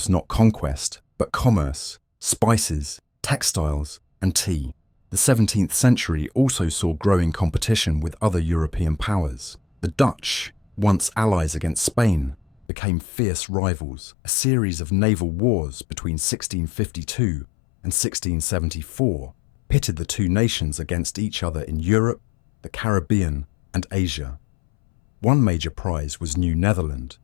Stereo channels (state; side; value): drops out; right; at 12.7 s